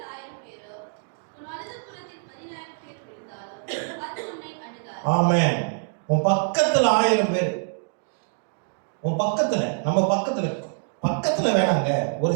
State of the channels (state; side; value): silent; left; digital silence